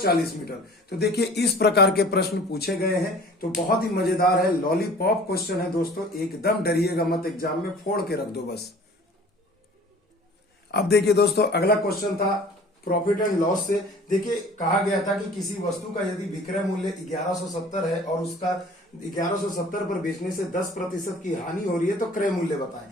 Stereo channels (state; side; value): normal; both; correlation 0.46